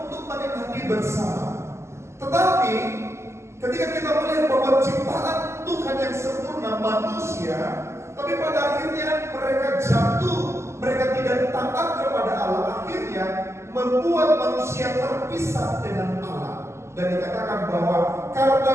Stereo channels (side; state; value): left; late; 0.13 ms